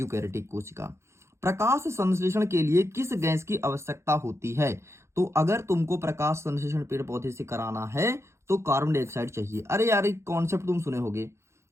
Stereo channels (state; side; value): late; left; 0.13 ms